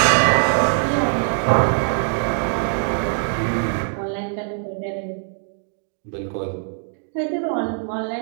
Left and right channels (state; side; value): silent; left; digital silence